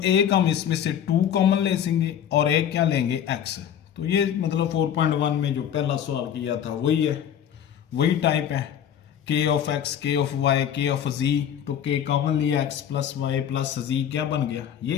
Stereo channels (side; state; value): right; quieter; 9.4 dB